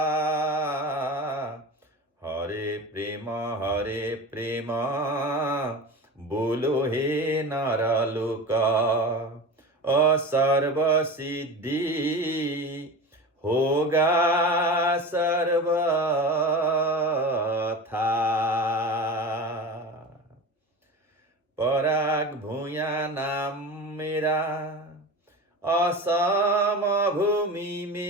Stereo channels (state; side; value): normal; both; correlation 0.30